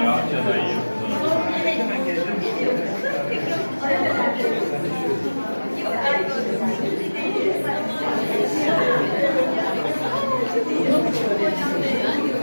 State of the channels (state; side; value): inverted; both; correlation -1.00